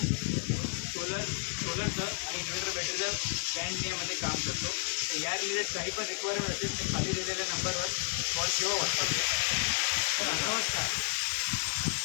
सोलरचं आणि इन्व्हर्टर बॅटरीचं पॅन इंडियामध्ये काम करतो. तर या रिलेटेड काही पण रिक्वायरमेंट असेल तर खाली दिलेल्या नंबरवर कॉल किंवा व्हॉट्सअप करा. तर नमस्कार.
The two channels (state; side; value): silent; right; digital silence